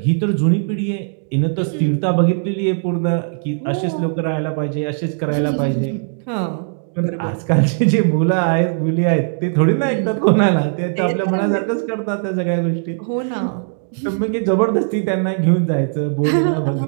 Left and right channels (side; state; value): left; silent; digital silence